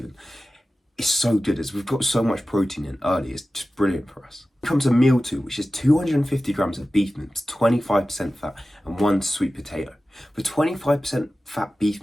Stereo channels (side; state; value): both; normal; correlation 0.95